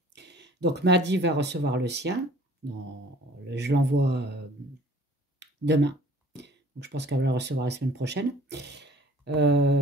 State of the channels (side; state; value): both; normal; correlation 0.50